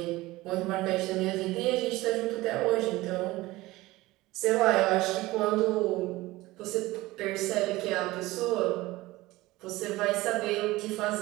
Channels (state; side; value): quieter; left; 19.1 dB